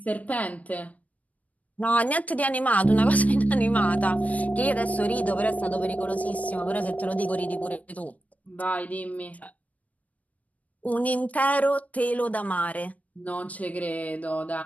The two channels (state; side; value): late; right; 0.070 ms